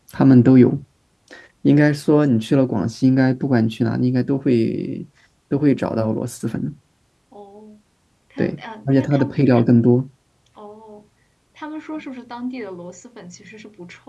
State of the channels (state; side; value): identical; both; correlation 1.00